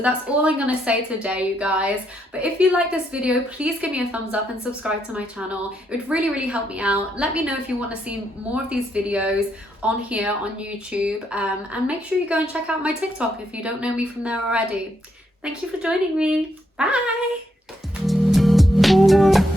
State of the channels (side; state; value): both; normal; correlation 0.77